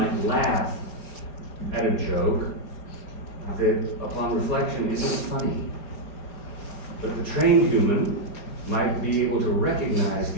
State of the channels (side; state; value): right; late; 4.7 ms